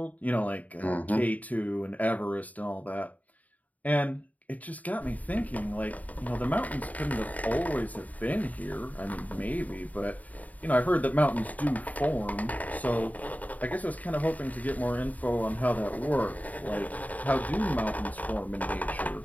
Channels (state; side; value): late; right; 0.074 ms